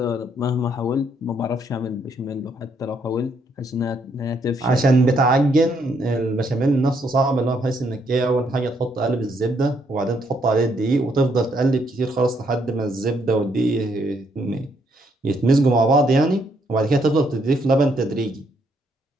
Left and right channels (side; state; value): both; normal; correlation 0.72